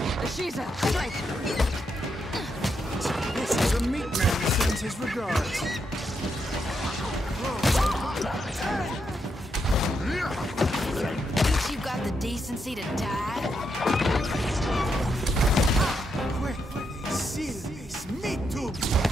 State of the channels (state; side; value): normal; both; correlation 0.81